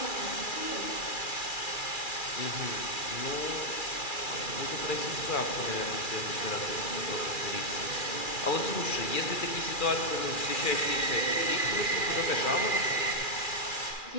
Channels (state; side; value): late; right; 2.4 ms